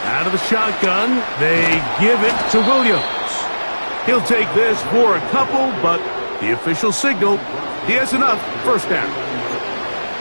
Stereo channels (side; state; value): both; inverted; correlation -1.00